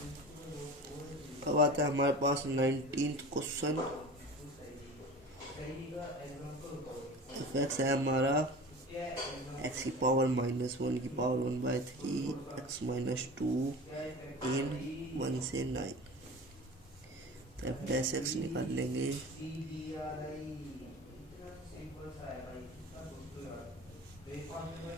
अब आता है हमारे पास 19th क्वेश्चन। एफ एक्स है हमारा एक्स की पावर -1 की पावर 1/3 एक्स -2 इन 1 से 9। तो एफ डैश एक्स निकाल लेंगे।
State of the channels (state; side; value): normal; both; correlation 0.35